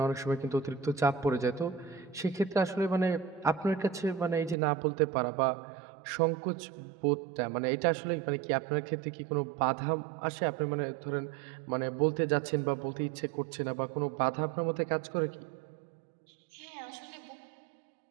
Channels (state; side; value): drops out; left; at 4.5 s